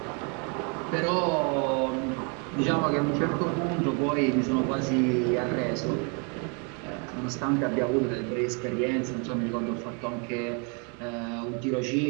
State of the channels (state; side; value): quieter; left; 35.7 dB